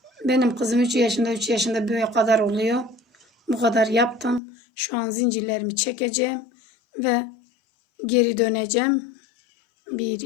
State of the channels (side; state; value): right; drops out; at 4.4 s